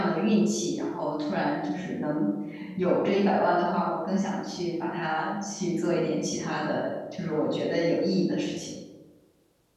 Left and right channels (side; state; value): both; identical; correlation 1.00